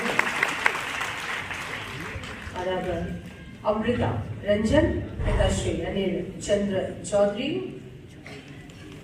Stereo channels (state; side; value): identical; both; correlation 1.00